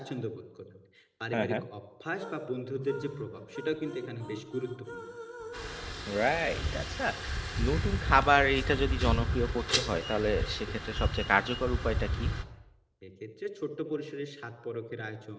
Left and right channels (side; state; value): both; identical; correlation 1.00